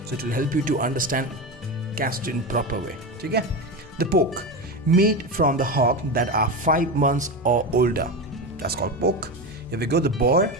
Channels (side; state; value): both; normal; correlation 0.20